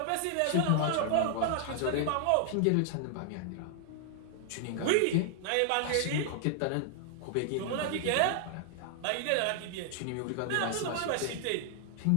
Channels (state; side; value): different; both; correlation 0.00